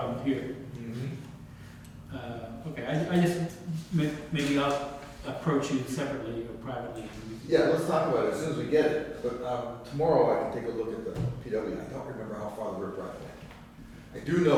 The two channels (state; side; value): identical; both; correlation 1.00